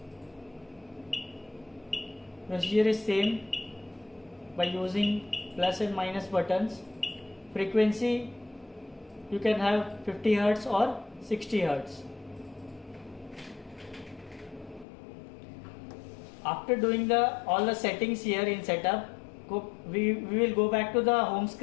Procedure is same by using plus and minus buttons. Frequency you can have 50 Hz or 60 Hz. After doing all the settings here in setup, we will go back to the home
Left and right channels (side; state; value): right; drops out; at 14.9 s